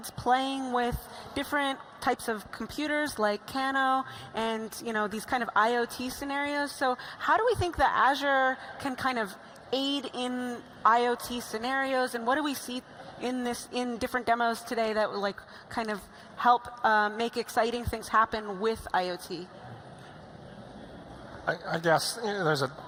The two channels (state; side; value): identical; both; correlation 1.00